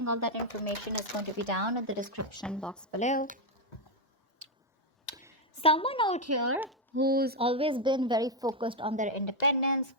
all that information is going to be down in the description box below. Someone out here who's always been very focused on their independence,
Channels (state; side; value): normal; both; correlation 0.04